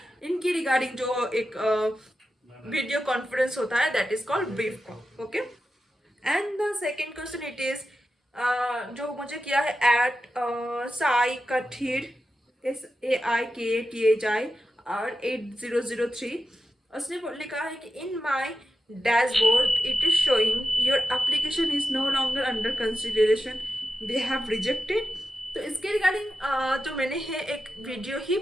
इनकी रिगार्डिंग जो एक वीडियो कॉन्फ्रेंस होता है, that is called brief call. Okay. And the second question it is जो मुझे किया है एट साई कठीर, SAIKTHIR 8003. उसने लिखा है कि in my dashboard it is showing your application is no longer under consideration, they have rejected. तो इसके रिगार्डिंग जो मैंने है एक वीडियो ही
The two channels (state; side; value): normal; both; correlation 0.91